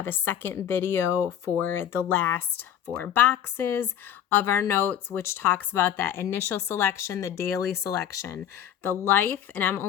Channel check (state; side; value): quieter; right; 10.0 dB